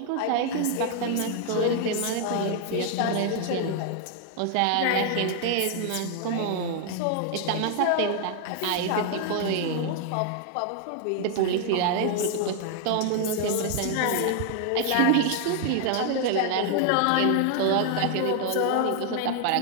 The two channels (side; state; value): both; different; correlation 0.00